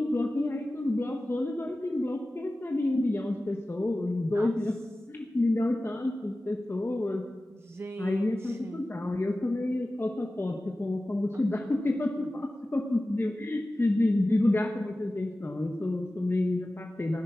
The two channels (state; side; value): normal; both; correlation 0.96